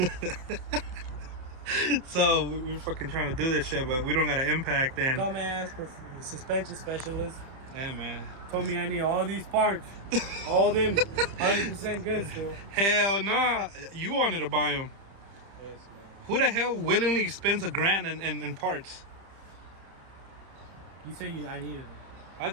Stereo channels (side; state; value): left; late; 30 ms